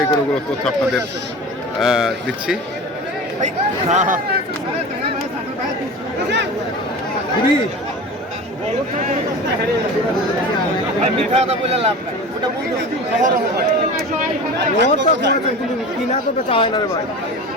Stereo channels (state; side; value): normal; both; correlation 0.33